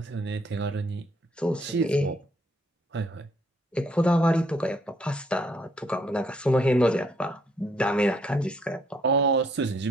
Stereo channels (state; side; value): normal; both; correlation 0.68